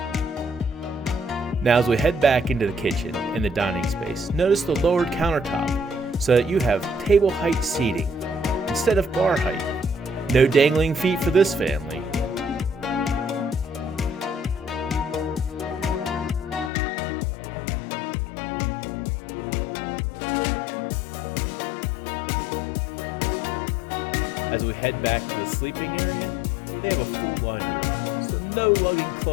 Now as we head back into the kitchen and the dining space, notice the lowered countertop so that you have table height seating instead of bar height. No dangling feet for this family. As we head back to the sleeping area, they have a full laundry room, so no lugging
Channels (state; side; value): drops out; right; at 16.7 s